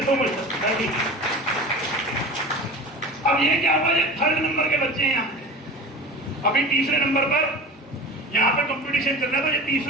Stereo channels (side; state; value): both; normal; correlation 0.34